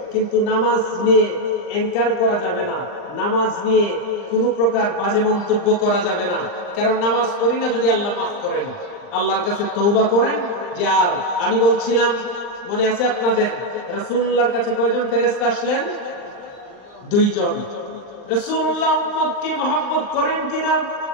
কিন্তু নামাজ নিয়ে এনকার করা যাবে না, নামাজ নিয়ে কোনো প্রকার বাজে মন্তব্য করা যাবে না। কারণ নামাজ পড়ি না যদি আল্লাহ মাফ করেন, আল্লাহর কাছে তওবা করেন। যে আর আমি বলছিলাম, মনে আছে আপনাদের, রাসূলুল্লাহর কাছে কয়জন ফেরেশতা আসলেন? 2 জন। রাসূলুল্লাহ উম্মতকে মহব্বত করেন কিনা,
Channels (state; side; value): late; right; 39 ms